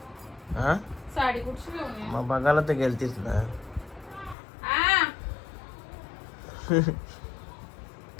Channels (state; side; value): drops out; right; at 4.4 s